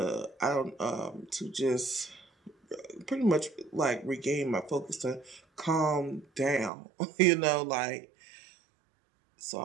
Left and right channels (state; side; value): drops out; left; at 6.7 s